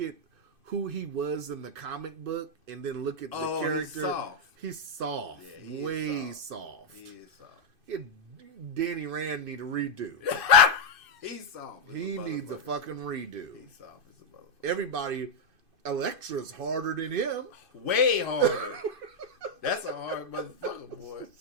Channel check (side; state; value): left; late; 2.5 ms